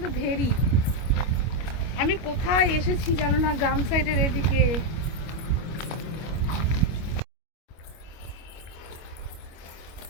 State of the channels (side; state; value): right; late; 25 ms